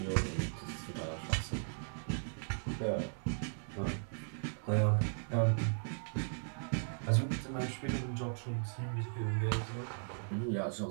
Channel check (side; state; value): left; silent; digital silence